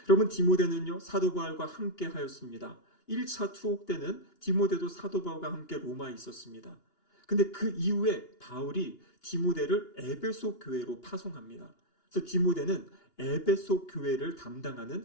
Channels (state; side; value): late; right; 2.8 ms